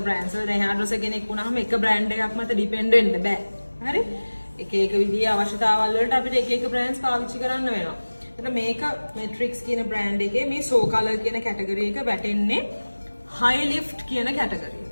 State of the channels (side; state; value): both; inverted; correlation -1.00